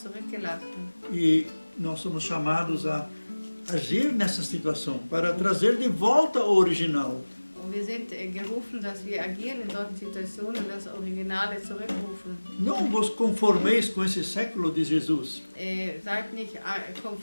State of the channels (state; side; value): inverted; both; correlation -1.00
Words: zurückgelassen. E nós somos chamados a agir nessa situação, para trazer de volta o original. Und wir sind gerufen, dass wir agieren in solchen Situationen und das Originale zurückrufen. Não vos conformeis com esse século de Jesus. Seid nicht